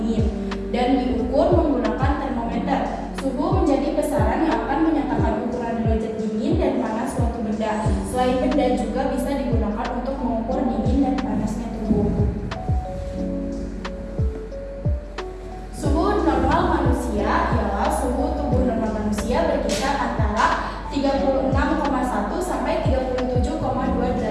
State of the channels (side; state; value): both; identical; correlation 1.00